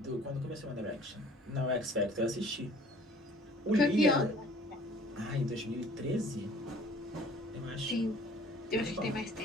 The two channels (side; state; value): both; normal; correlation 0.52